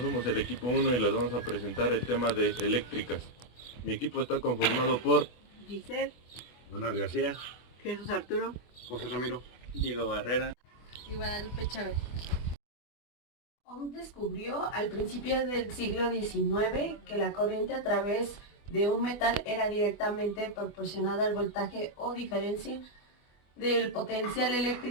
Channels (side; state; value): right; late; 24 ms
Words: somos el equipo 1 y les vamos a presentar el tema de eléctricas. Mi equipo está conformado por Giselle, Manuel García, Jesús Arturo, José Ramiro, Diego Barrera y Guadalupe Chávez. Ohm descubrió al principio del siglo XIX que la corriente a través de un metal era directamente proporcionada al voltaje o diferencia del potencial